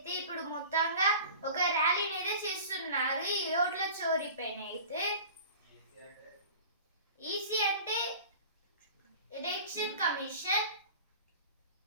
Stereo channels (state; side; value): inverted; both; correlation -0.40